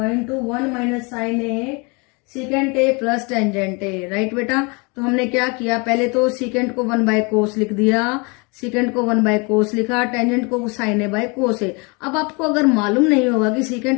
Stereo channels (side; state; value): right; quieter; 29.9 dB